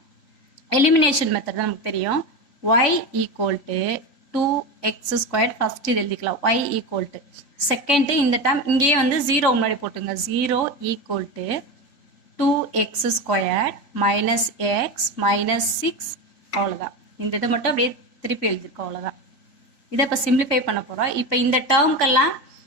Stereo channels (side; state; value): right; late; 3.3 ms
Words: எலிமினேஷன் மெத்தட் தான் நமக்கு தெரியும். y equal to 2x squared first இது எழுதிக்கலாம். y equal to செகண்ட் இந்த டேர்ம் இங்கேயே வந்து 0 முன்னாடி போட்டுங்க. 0 equal to 2x squared minus x minus 6. அவ்வளோதான். இந்த இதை மட்டும் அப்படியே திருப்பி எழுதிருக்கோம். அவ்வளோதான். இதை இப்போ சிம்பிளிஃபை பண்ண போகிறோம். இப்போ இந்த டேர்ம்க்கெல்லாம்